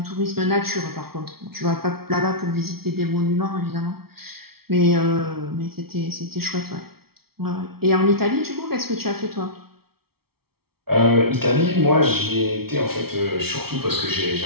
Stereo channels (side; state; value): left; late; 0.95 ms